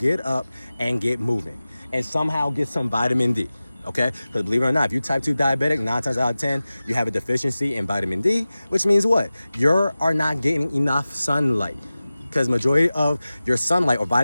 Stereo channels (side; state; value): both; inverted; correlation -0.96